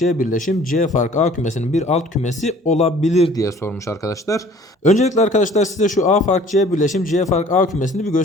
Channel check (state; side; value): normal; both; correlation 0.51